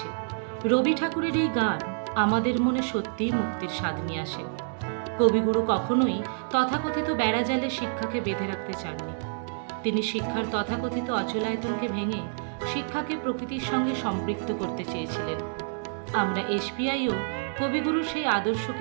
রবি ঠাকুরের এই গান আমাদের মনে সত্যিই মুক্তির স্বাদ নিয়ে আসে। কবিগুরু কখনোই তথাকথিত বেড়াজালে শিক্ষাকে বেঁধে রাখতে চাননি। তিনি শিক্ষার তথাকথিত অচলায়তনকে ভেঙে শিক্ষাকে প্রকৃতির সঙ্গে সম্পৃক্ত করতে চেয়েছিলেন। আমরা এসপিআইও কবিগুরুর সেই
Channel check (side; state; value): left; silent; digital silence